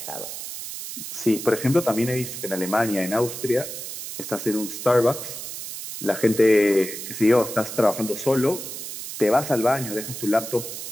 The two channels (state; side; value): noise; right; hiss, 8 dB below the sound